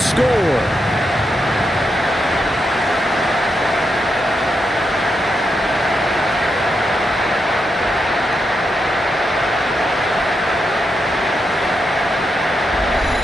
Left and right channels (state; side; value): normal; both; correlation 0.84